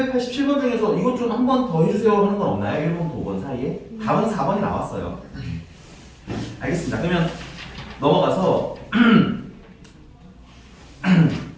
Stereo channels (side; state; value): both; identical; correlation 1.00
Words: 중에서 이것 좀 한 번 더 해주세요 하는 건 없나요? 1번부터 5번 사이에? 답은 4번이 나왔어요. 알겠습니다. 그러면 넘어가서